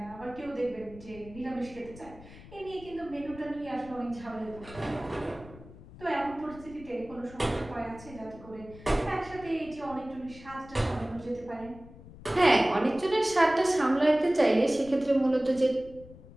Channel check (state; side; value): noise; left; rumble, 18 dB below the sound